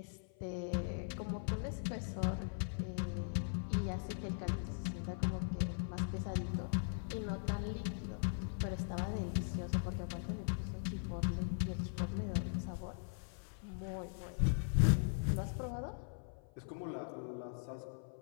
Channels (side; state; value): right; silent; 51 dB below the other